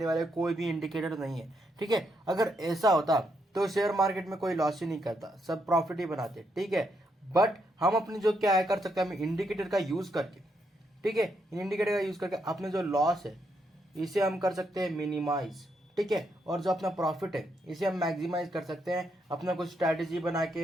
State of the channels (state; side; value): normal; both; correlation 0.78